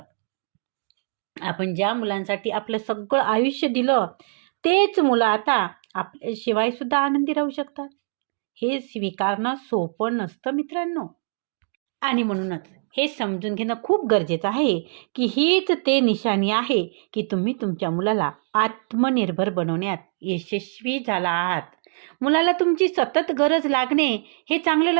आपण ज्या मुलांसाठी आपलं सगळं आयुष्य दिलं, तेच मुलं आता आपल्याशिवाय सुद्धा आनंदी राहू शकतात. हे स्वीकारणं सोपं नसतं मित्रांनो. आणि म्हणूनच हे समजून घेणं खूप गरजेचं आहे की हीच ते निशाणी आहे की तुम्ही तुमच्या मुलाला आत्मनिर्भर बनवण्यात यशस्वी झाला आहात. मुलाला तुमची सतत गरज लागणे हे चांगलं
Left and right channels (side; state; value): left; silent; digital silence